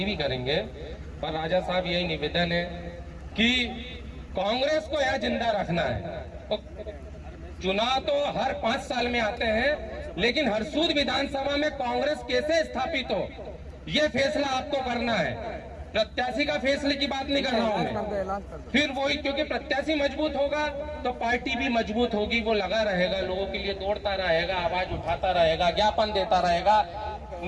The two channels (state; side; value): identical; both; correlation 1.00